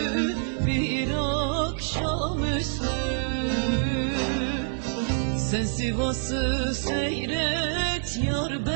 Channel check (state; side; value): silent; left; digital silence